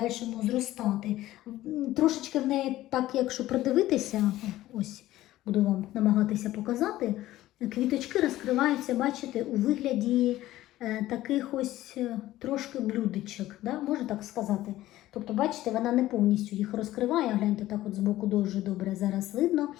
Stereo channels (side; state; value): right; quieter; 15.3 dB